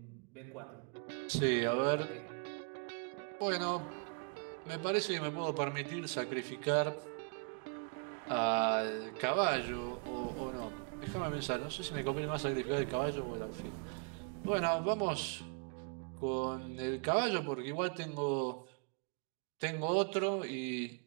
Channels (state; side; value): quieter; left; 38.6 dB